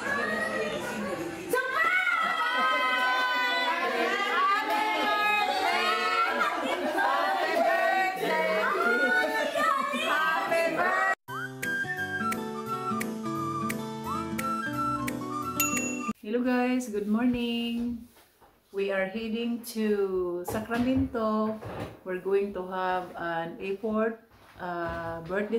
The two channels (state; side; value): identical; both; correlation 1.00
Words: guys, good morning. We are heading to Sacramento. We're going to have an airport